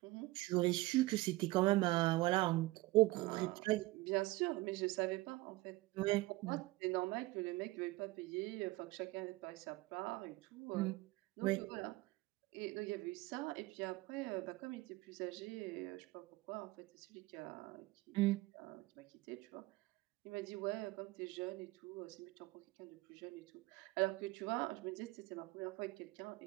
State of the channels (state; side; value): quieter; left; 20.0 dB